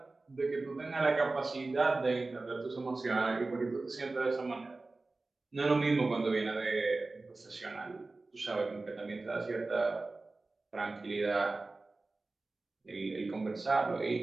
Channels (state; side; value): quieter; left; 3.4 dB